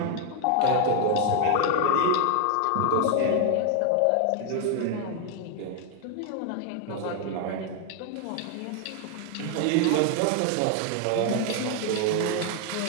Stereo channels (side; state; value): both; different; correlation 0.00